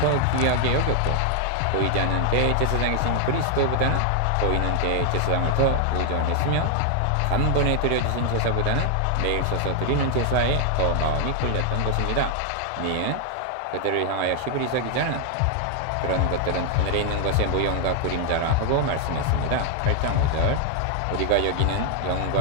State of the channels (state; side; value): different; both; correlation 0.00